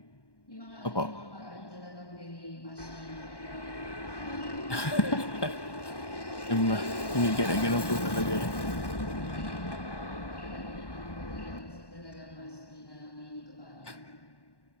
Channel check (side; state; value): right; late; 1.1 ms